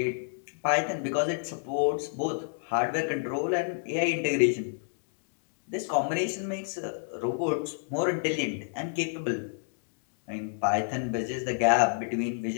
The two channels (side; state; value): right; silent; digital silence